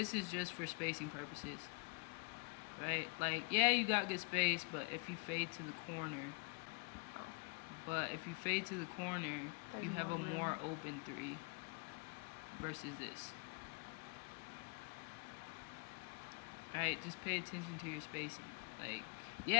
is just for spacing purposes, right? Like, yeah, you got good space, but if you fade to the corner, you have a more open 3 versus this. Alright, just pay attention to your spacing. Like,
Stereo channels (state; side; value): quieter; right; 33.3 dB